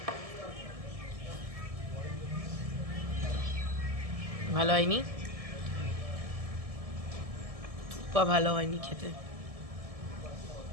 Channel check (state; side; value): late; left; 1.7 ms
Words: ভালো হয়নি, থুপ্পা ভালো হয়নি খেতে।